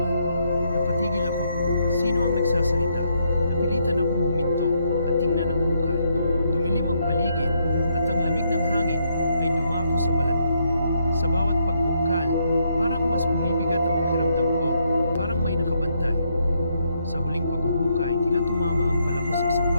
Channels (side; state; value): both; inverted; correlation -0.75